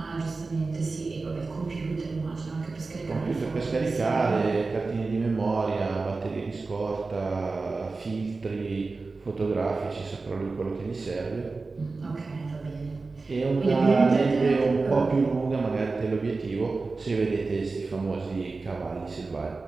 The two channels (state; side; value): quieter; left; 3.9 dB